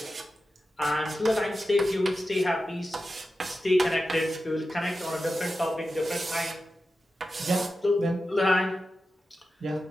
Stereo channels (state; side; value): normal; both; correlation 0.92